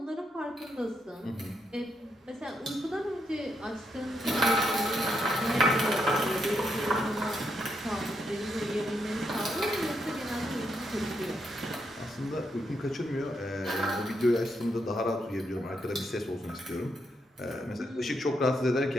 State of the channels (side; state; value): both; normal; correlation 0.80